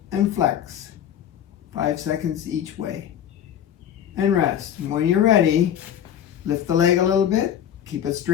and flex. 5 seconds each way. And rest. And when you're ready, lift the leg a little bit, keep it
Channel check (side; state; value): right; quieter; 9.9 dB